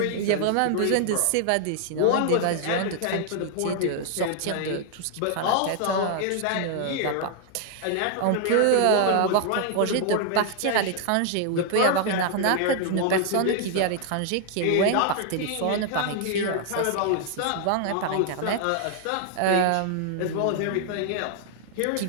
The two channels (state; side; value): different; both; correlation 0.00